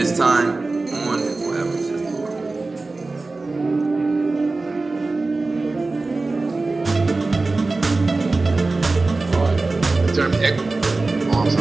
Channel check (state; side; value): quieter; left; 3.5 dB